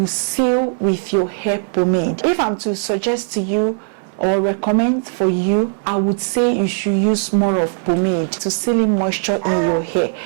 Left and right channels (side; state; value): left; silent; digital silence